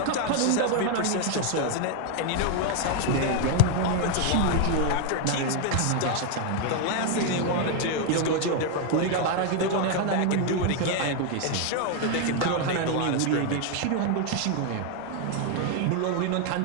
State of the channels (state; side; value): different; both; correlation 0.01